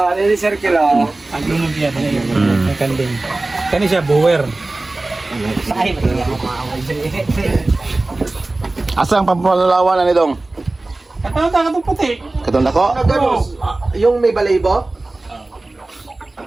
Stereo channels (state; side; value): quieter; left; 3.0 dB